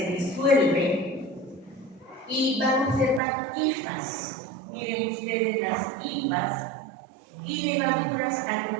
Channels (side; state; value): left; drops out; at 3.2 s